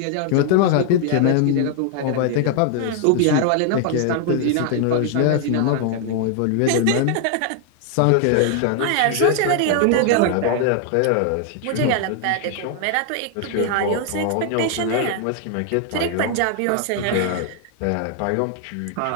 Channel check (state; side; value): different; both; correlation 0.00